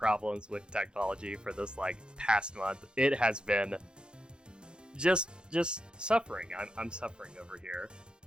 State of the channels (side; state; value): left; late; 0.050 ms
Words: with technology for this, past month. It has been just suffering. I'm suffering over here.